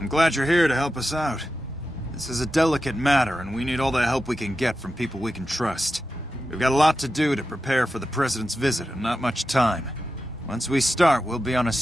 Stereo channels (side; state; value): both; normal; correlation 0.91